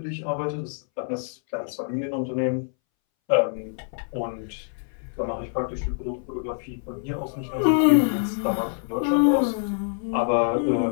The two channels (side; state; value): right; silent; 61 dB below the other